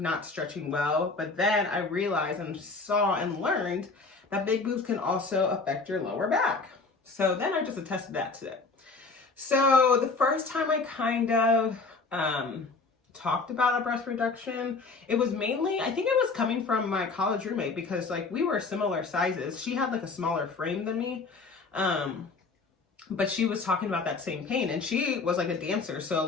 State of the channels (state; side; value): quieter; right; 4.1 dB